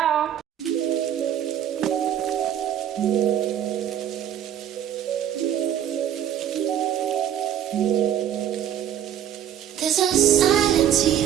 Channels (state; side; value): quieter; left; 10.3 dB